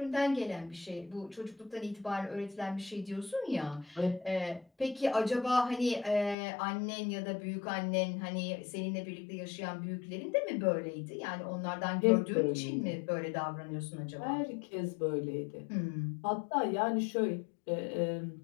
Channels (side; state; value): right; drops out; at 6.4 s